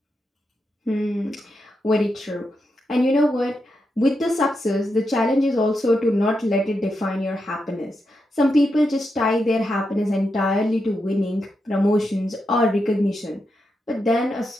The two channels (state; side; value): normal; both; correlation 0.85